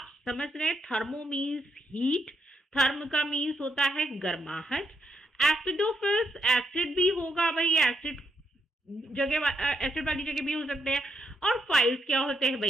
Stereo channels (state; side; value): normal; both; correlation 0.78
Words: समझ रहे हैं, थर्मो मीन्स हीट, थर्म का मीन्स होता है गर्माहट, एसिडोफिल्स एसिड भी होगा भाई, एसिड वाली जगह भी हो सकते हैं, और फाइल्स क्या होते हैं